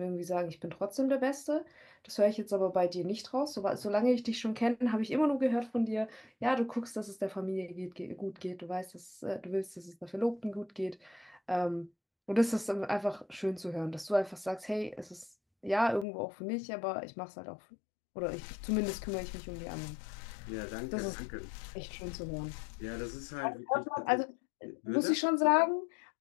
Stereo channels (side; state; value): right; drops out; at 16.1 s